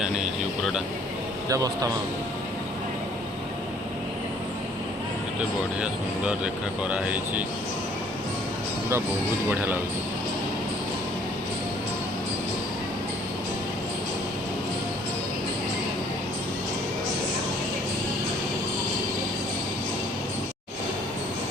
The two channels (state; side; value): normal; both; correlation 0.59